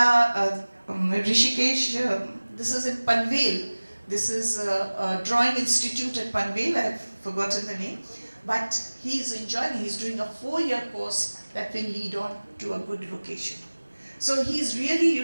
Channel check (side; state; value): both; inverted; correlation -1.00